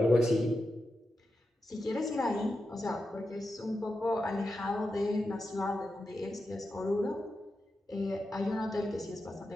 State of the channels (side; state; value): both; normal; correlation 0.89